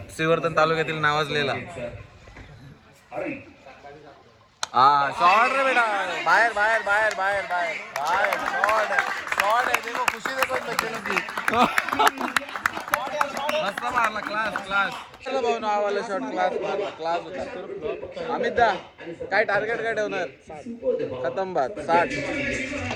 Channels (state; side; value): identical; both; correlation 1.00